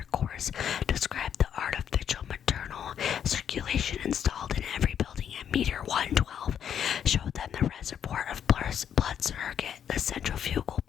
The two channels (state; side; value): quieter; right; 8.8 dB